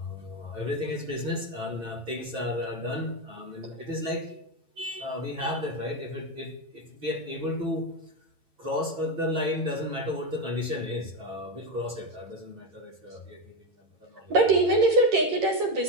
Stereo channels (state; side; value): late; left; 8.9 ms